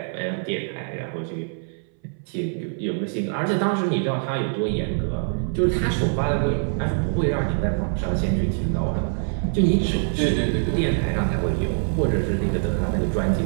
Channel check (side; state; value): left; silent; 60 dB below the other